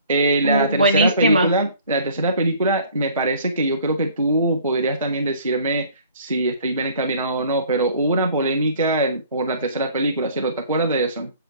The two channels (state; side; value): inverted; both; correlation -0.53